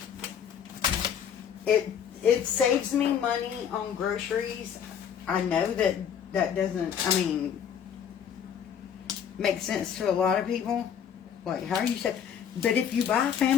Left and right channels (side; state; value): right; quieter; 8.2 dB